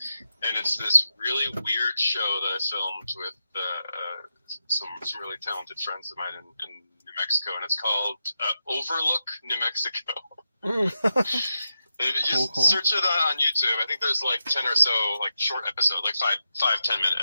and it's this really weird show that I filmed with some really talented friends of mine in New Mexico, and it's called Overlook New Mexico. Just search it on YouTube. I think there's like 10 or so like short episodes, like 5-10 minute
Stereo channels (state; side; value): inverted; both; correlation -0.88